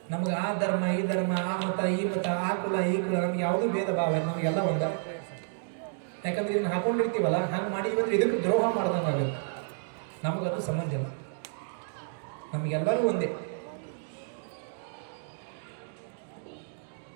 ನಮ್ಗೆ ಆ ಧರ್ಮ ಈ ಧರ್ಮ, ಆ ಮತ ಈ ಮತ, ಆ ಕುಲ ಈ ಕುಲ, ನಮ್ಗೆ ಯಾವುದೂ ಭೇದ ಭಾವ, ನಮಗೆಲ್ಲ ಒಂದ. ಯಾಕಂದ್ರೆ ಇದನ್ನ ಹಾಕೊಂಡಿರ್ತೀವಲ್ಲ, ಹಂಗೆ ಮಾಡಿದ್ವಿ ಇದಕ್ಕೆ ದ್ರೋಹ ಮಾಡ್ದಂಗಾಗುತ್ತೆ. ನಮಗದು ಸಂಬಂಧ ಇಲ್ಲ, ನಮಗೆಲ್ಲರೂ ಒಂದೇ.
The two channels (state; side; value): silent; left; digital silence